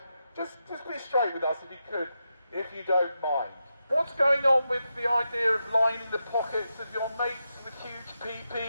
just be straight with us if you could, if you don't mind. What's going on with the idea of lining the pockets of your mates with huge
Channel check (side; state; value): both; inverted; correlation -0.87